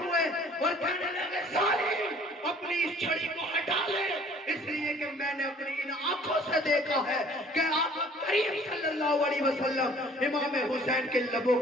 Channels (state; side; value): normal; both; correlation 0.53